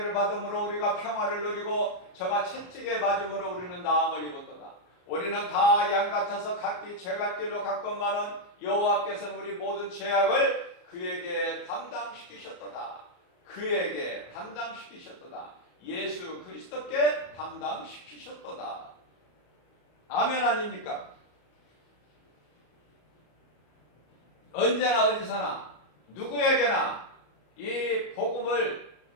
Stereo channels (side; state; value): right; late; 33 ms